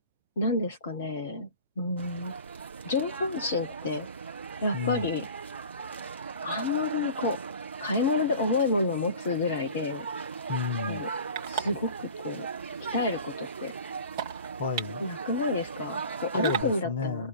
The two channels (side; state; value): both; inverted; correlation -0.39